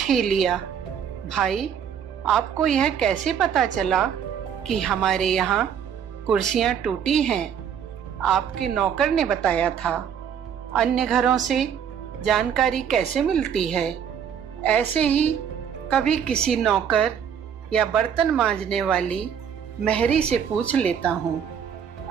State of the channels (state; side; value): quieter; left; 8.2 dB